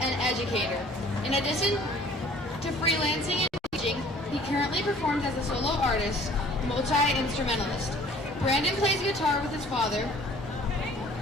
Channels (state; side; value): normal; both; correlation 0.52